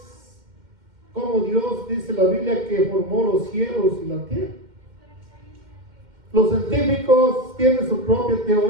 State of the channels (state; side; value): late; left; 2.1 ms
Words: como Dios dice la Biblia que formó los cielos y la tierra. Los científicos tienen su propia